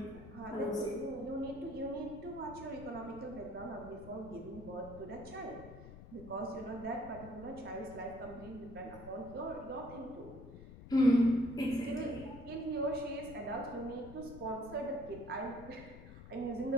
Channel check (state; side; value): noise; left; rumble, 14 dB below the sound